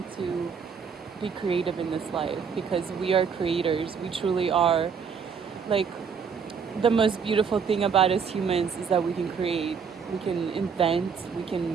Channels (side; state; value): left; quieter; 6.3 dB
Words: to be creative in this life because we are creators. We truly are. Like, the most beautiful thing about us humans is that we can create, we can invent, we